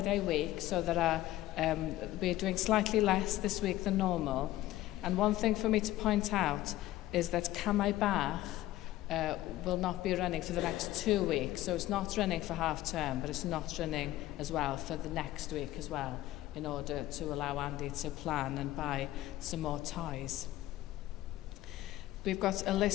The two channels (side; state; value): right; quieter; 15.4 dB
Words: week, so we're doing slightly less this week than normal. And one thing for me to point out is that Camai Bach will not be running for the next 2 weeks. So it's not running for half term, but it's not running as well for the next week as well, in order to allow Andy to plan and buy some more ties. We've got a